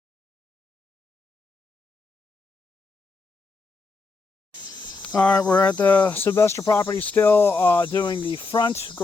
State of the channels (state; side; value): quieter; right; 4.0 dB